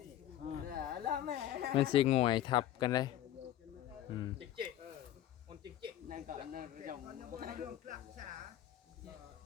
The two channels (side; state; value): right; quieter; 12.5 dB